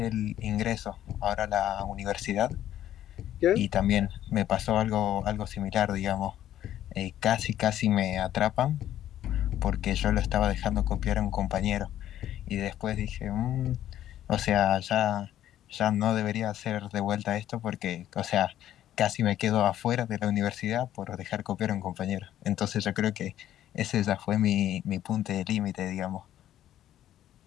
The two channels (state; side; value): quieter; right; 12.1 dB